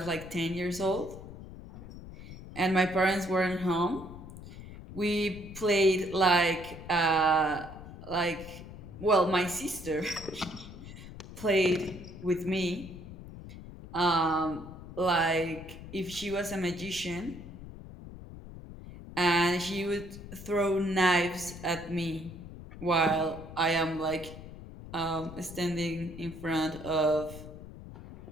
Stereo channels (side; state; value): left; noise; rumble, 14 dB below the sound